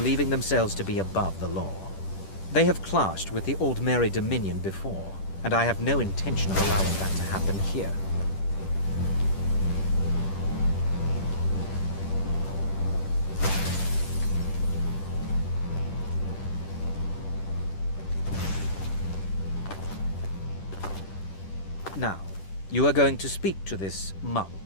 themselves to be above the law. They have clashed with the Old Mary Dominion before, and I have no intention of allowing that to happen here. Now, you are going to speak to this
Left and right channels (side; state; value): right; late; 10 ms